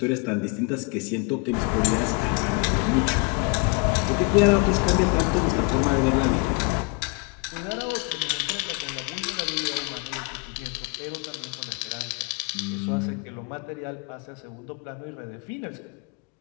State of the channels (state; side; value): quieter; right; 31.7 dB